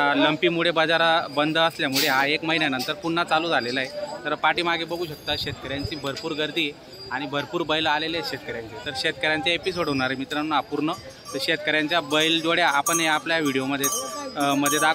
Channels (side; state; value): both; identical; correlation 1.00